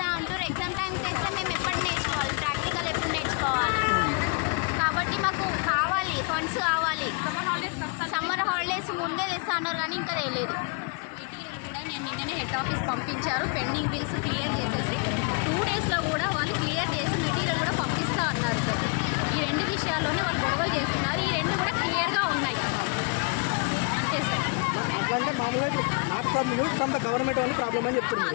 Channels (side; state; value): right; quieter; 35.1 dB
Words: అంటారు. ఎగ్జామ్ టైం తెస్తే మేము ఎప్పుడు నేర్చుకోవాలి, ప్రాక్టికల్ ఎప్పుడు నేర్చుకోవాలి? కాబట్టి మాకు కావాలి, ఫండ్స్ కావాలి. సమ్మర్ హాలిడేస్ ముందే తెస్తా అన్నారు కానీ ఇంకా తెలియదు. మెటీరియల్ కూడా నేను నిన్ననే హెడ్ ఆఫీస్ పంపించారు, పెండింగ్ బిల్స్ క్లియర్ చేసేసి 2 daysలో కూడా వాళ్ళు క్లియర్ చేసి మెటీరియల్ కూడా పంపిస్తా అన్నారు సార్. ఈ 2 విషయాల్లోనే వాళ్ళు గొడవలు చేస్తున్నారు, ఈ 2 కూడా క్లియర్గా ఉన్నాయి అంతే సార్.